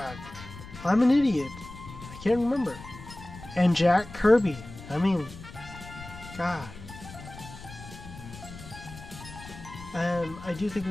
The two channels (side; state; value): left; noise; rumble, 15 dB below the sound